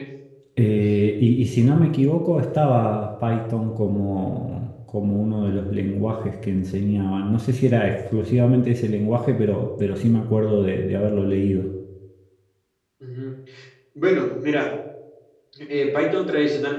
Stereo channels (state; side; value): identical; both; correlation 1.00